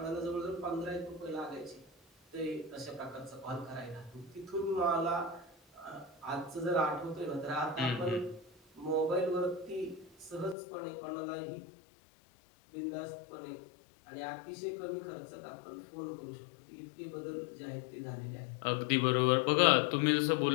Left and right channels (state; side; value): drops out; right; at 10.6 s